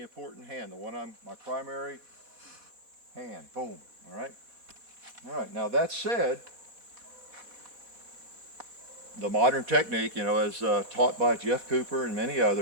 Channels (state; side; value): late; left; 4.1 ms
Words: important hand, the one my primary hand. Boom. All right. All right. Now that said, the modern technique, you know, as taught by Jeff Cooper and many